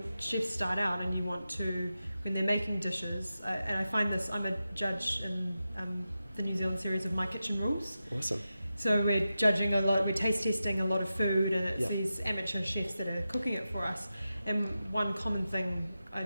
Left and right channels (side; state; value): both; inverted; correlation -0.92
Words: chefs start out and when they're making dishes, and I find this, I'm a judge in the New Zealand series of My Kitchen Rules. Awesome. So we're judging a lot, we're taste testing a lot of food, and it's Yep. these amateur chefs that are cooking it for us. And one common thing I